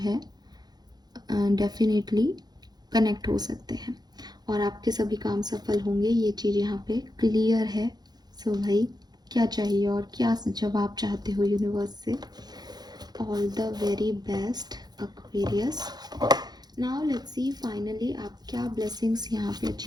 डेफिनेटली कनेक्ट हो सकते हैं और आपके सभी काम सफल होंगे। ये चीज़ यहाँ पे क्लियर है। सो भाई क्या चाहिए और क्या जवाब चाहते हो यूनिवर्स से। All the very best Aquarius. Now let's see finally आप क्या ब्लेसिंग्स यहाँ पे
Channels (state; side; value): late; left; 0.20 ms